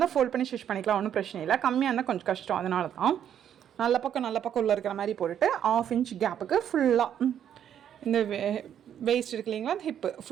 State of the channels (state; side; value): quieter; left; 9.5 dB